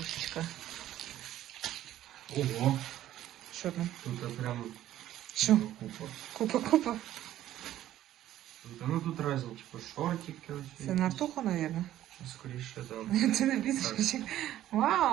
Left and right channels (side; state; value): left; quieter; 13.0 dB